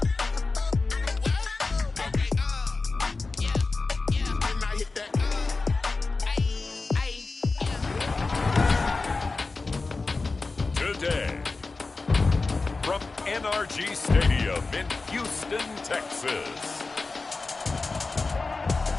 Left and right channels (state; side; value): quieter; right; 3.8 dB